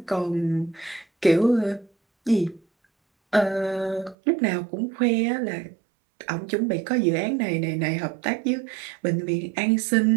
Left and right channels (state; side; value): drops out; left; at 4.2 s